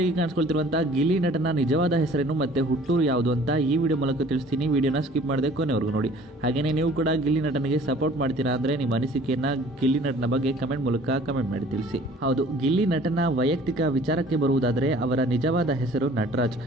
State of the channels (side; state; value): both; normal; correlation 0.51